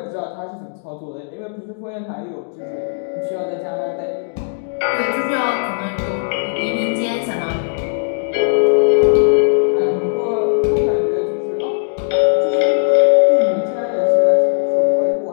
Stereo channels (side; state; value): right; silent; digital silence